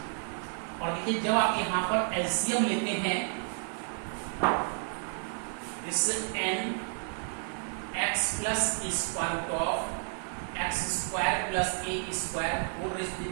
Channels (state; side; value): silent; left; 57 dB below the other